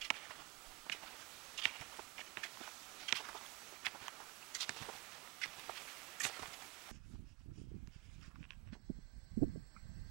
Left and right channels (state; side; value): quieter; left; 23.7 dB